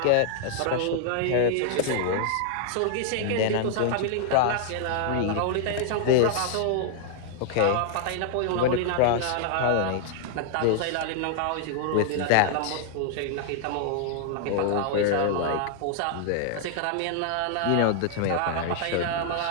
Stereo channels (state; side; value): different; both; correlation -0.01